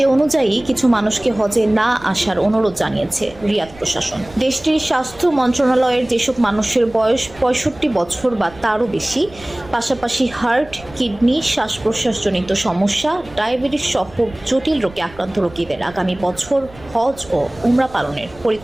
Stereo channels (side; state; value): right; noise; rumble, 21 dB below the sound